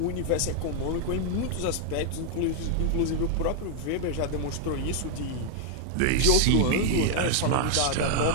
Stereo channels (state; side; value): different; both; correlation 0.00